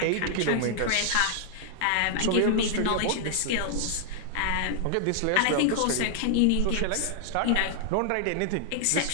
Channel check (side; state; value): both; different; correlation -0.01